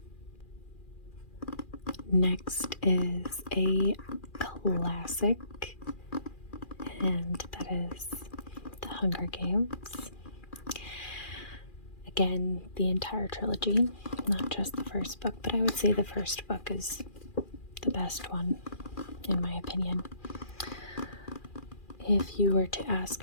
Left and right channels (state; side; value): late; right; 2.4 ms